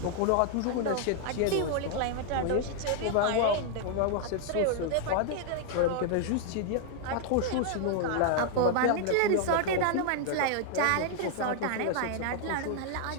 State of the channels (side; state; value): both; different; correlation 0.00